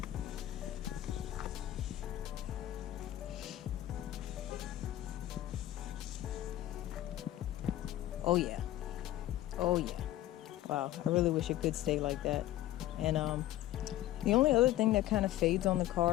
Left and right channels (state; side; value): quieter; right; 14.2 dB